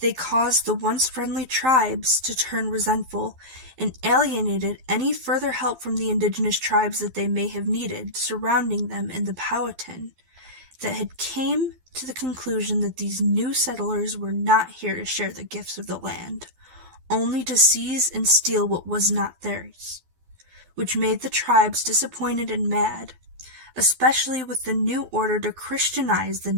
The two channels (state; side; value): late; left; 12 ms